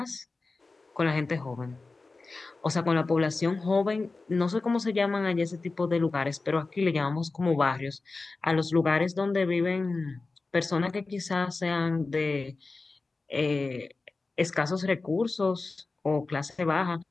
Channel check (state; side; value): quieter; right; 3.7 dB